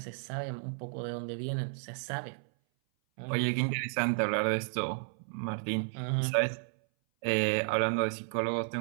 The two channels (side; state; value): left; silent; 56 dB below the other